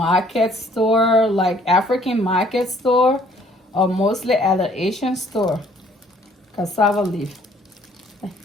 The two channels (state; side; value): normal; both; correlation 0.60